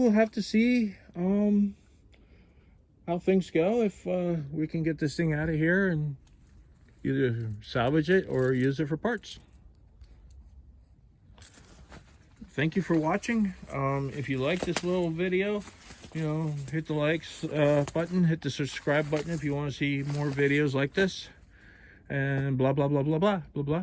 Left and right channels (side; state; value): both; identical; correlation 1.00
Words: have to see how things go, if we can get this thing out of here and either salvage it or use it for parts. Thank you for watching. If you like this little video, hit the likes button, hit the subscribe button if you want to see more videos like this, and blah blah blah blah blah blah